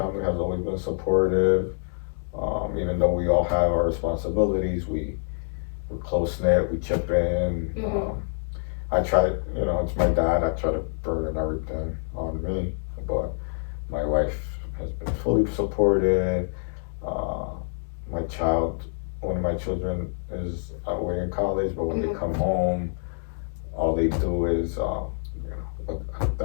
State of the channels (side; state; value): right; silent; digital silence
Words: has always been supportive. Even though we all have our responsibilities, we're close knit. We chip in. I try, it's my dad. I try to burden everything on me, but my wife has been fully supportive. Uh, one of my children is away in college, but when they come home, all they do is,